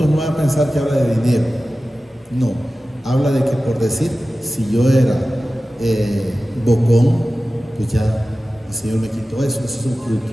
no va a pensar que habla de dinero. No, habla de que, por decir, si yo era bocón, pues ya el Señor me quitó eso, ese es un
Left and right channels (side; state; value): both; normal; correlation 0.95